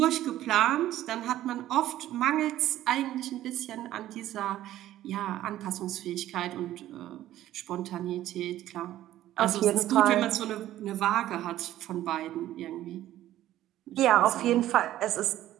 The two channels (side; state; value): left; quieter; 13.6 dB